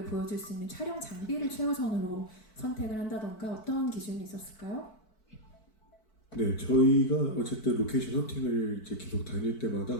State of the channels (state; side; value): late; right; 4.6 ms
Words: 보여줄 수 있는 촬영 장비를 최우선으로 선택을 한다던가, 어떤 기준이 있었을까요? 네, 저희가 어쨌든 로케이션 헌팅을 이제 계속 다닐